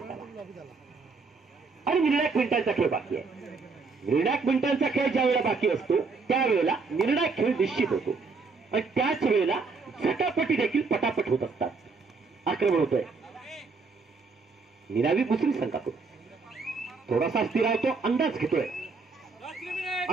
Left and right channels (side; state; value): left; quieter; 4.4 dB